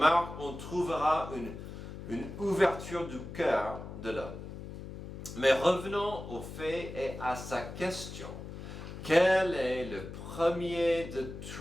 on trouvera une ouverture du cœur de l'homme. Mais revenons au fait et à sa question. Quel est le premier de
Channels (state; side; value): noise; left; hum, 10 dB below the sound